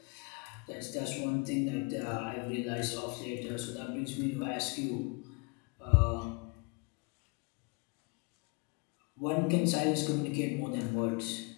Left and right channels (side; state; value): right; quieter; 31.5 dB